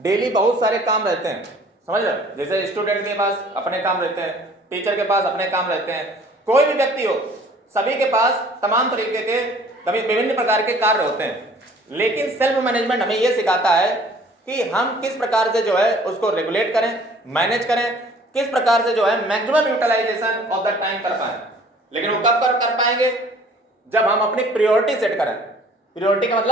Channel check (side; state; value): both; normal; correlation 0.53